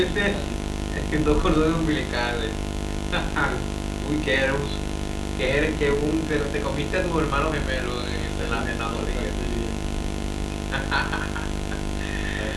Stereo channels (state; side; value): identical; both; correlation 1.00